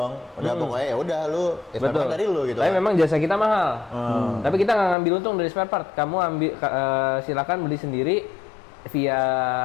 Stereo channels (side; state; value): right; drops out; at 5.0 s